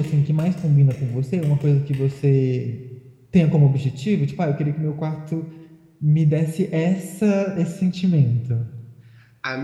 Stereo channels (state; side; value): identical; both; correlation 1.00